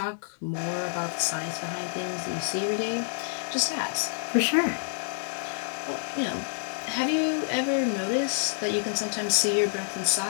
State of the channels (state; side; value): silent; right; digital silence